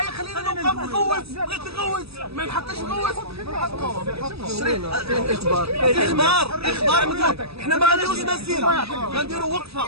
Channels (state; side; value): late; left; 0.78 ms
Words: خلينا نوقف نغوت، بغيت نغوت ما نحقش نغوت. اخبار مدير، حنا ما غنديروش مسيره، غنديروا وقفه.